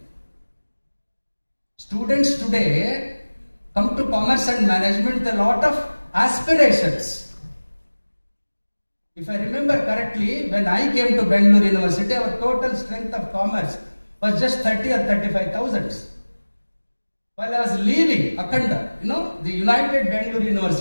Students today come to commerce and management with a lot of aspirations. If I remember correctly, when I came to Bangalore University, our total strength of commerce was just 30 or 35,000. While I was leaving Akhanda, the United Bangalore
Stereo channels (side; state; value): both; inverted; correlation -1.00